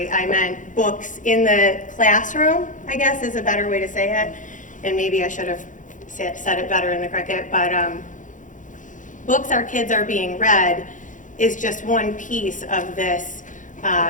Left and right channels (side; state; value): right; late; 0.37 ms